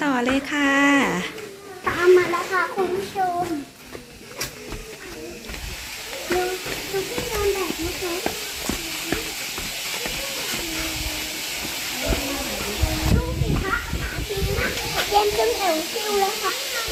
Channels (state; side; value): identical; both; correlation 1.00